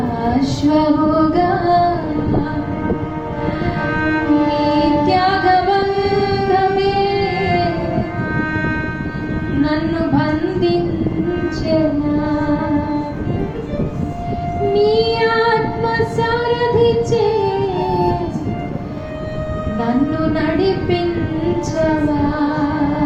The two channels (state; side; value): identical; both; correlation 1.00